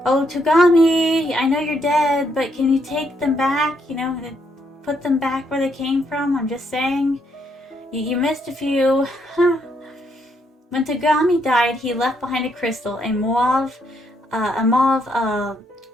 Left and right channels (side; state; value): both; normal; correlation 0.74